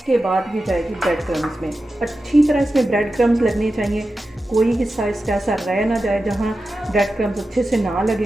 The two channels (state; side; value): normal; both; correlation 0.92